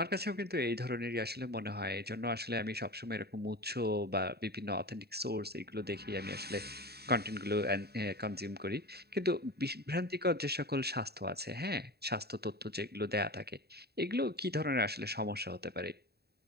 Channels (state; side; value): late; left; 0.47 ms